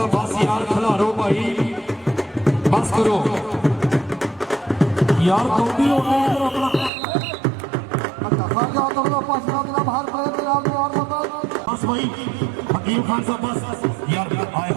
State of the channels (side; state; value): left; drops out; at 6.9 s